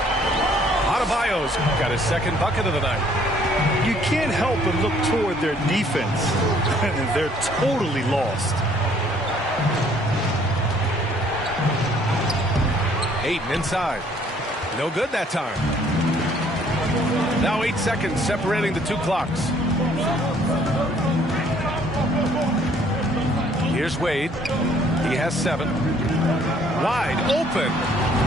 Adebayo's got his second bucket of the night. You can't help but look toward their defense. And they're totally lost. Ayton inside. No good that time. Now 8 seconds separating the two clocks. Here's Wade. He has 7. Wide open.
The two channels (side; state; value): both; normal; correlation 0.61